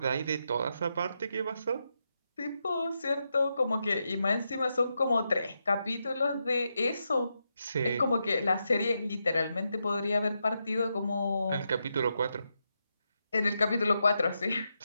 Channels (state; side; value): inverted; both; correlation -0.84